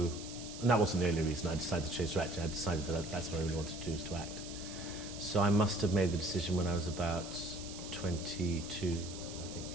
that wasn't the only reason I decided to change to acting. I decided that that's what I really wanted to do, was to act. So I must have made the decision when I was about 22, I think,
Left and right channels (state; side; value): noise; right; hiss, 12 dB below the sound